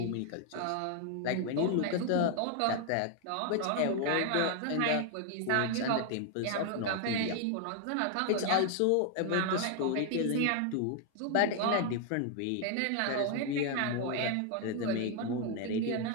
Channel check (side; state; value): both; different; correlation 0.00